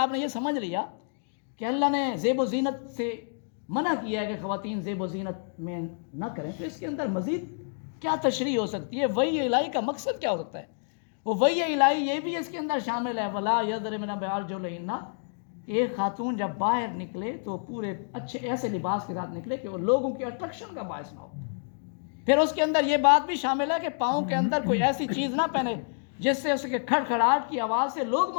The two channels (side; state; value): right; silent; digital silence